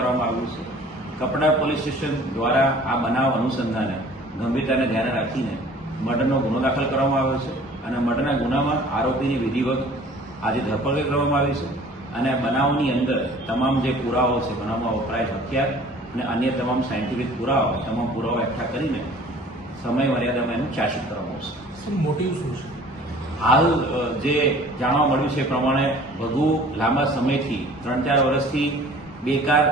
આવ્યું છે। કપડા પોલીસ સ્ટેશન દ્વારા આ બનાવ અનુસંધાને ગંભીરતાને ધ્યાને રાખીને મર્ડરનો ગુનો દાખલ કરવામાં આવ્યો છે અને મર્ડરના ગુનામાં આરોપીની વિધિવત આજે ધરપકડ કરવામાં આવી છે અને બનાવની અંદર તમામ જે પુરાવાઓ છે, બનાવમાં વપરાયેલ હથિયાર અને અન્ય તમામ સાયન્ટિફિક પુરાવા, તમામ પુરાવા એકઠા કરીને સમય મર્યાદામાં એનું ચાર્જશીટ કરવામાં આવશે। મોટિવ શું છે? હાલ જે જાણવા મળ્યું છે એ પ્રમાણે ભગુ લાંબા સમયથી 3-4 વર્ષથી બેકાર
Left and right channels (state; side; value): normal; both; correlation 0.49